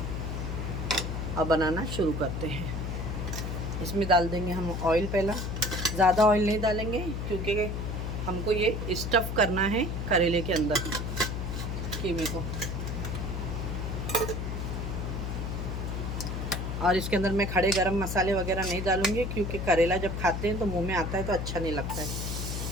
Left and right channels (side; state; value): left; noise; hum, 3 dB below the sound